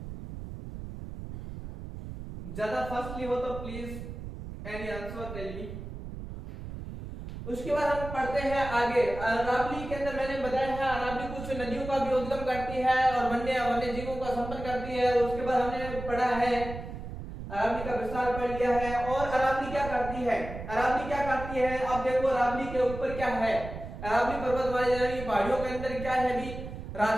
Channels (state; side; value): noise; right; rumble, 9 dB below the sound